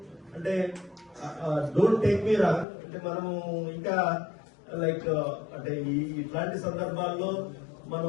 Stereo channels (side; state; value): right; drops out; at 2.7 s